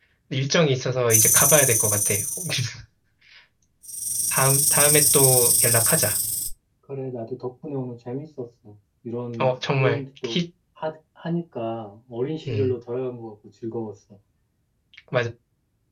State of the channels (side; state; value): both; identical; correlation 1.00